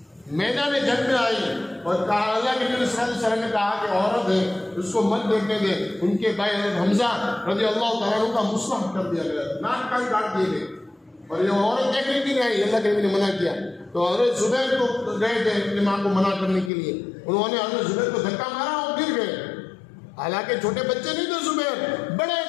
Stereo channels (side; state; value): right; drops out; at 16.7 s